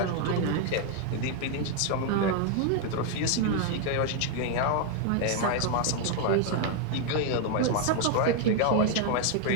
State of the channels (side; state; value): both; different; correlation 0.00